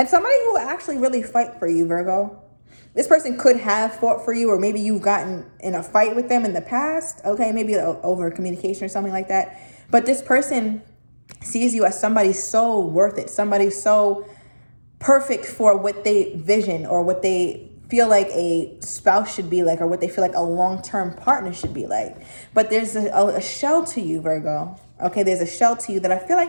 somebody who will actually really fight for you, Virgo. This person could have fought for you, or maybe you've gotten in a fight with them in the past. Okay, maybe over communication or something like that. But this person sees you as somebody so worth it, somebody so perfect for what they vision or what they feel like a spouse should be like, or what they feel like a long-term partner should be like. But there's a shell to you, Virgo. Okay, there's a shell to you that I feel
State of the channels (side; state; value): both; inverted; correlation -1.00